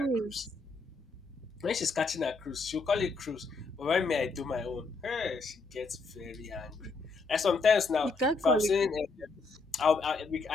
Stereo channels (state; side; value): quieter; right; 4.0 dB